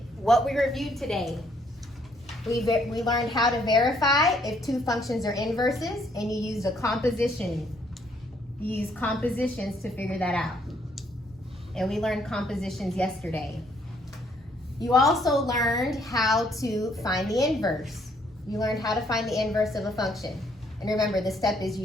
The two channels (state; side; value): normal; both; correlation 0.68